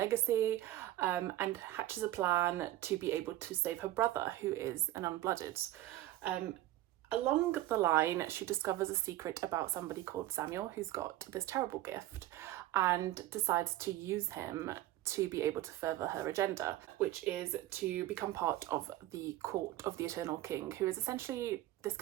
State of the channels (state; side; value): quieter; left; 15.1 dB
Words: and hatches a plan to be able to save her brother, who is an unblooded. Along the line, she discovers a secret about somebody called Samuel, who's got this terrible gift, and decides to use him to be able to further her agenda, which is to become part of the court of the Eternal King, who is essentially this